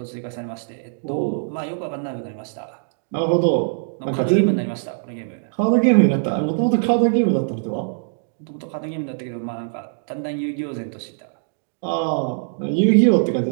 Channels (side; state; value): left; silent; digital silence